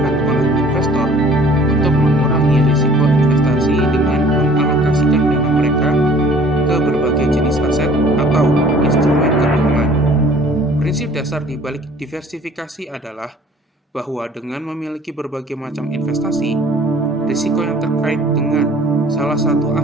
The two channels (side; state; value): both; normal; correlation 0.52